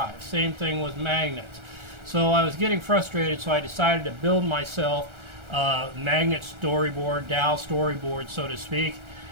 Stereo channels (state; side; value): late; left; 1.4 ms